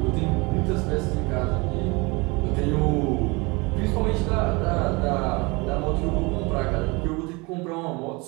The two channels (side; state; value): left; quieter; 26.5 dB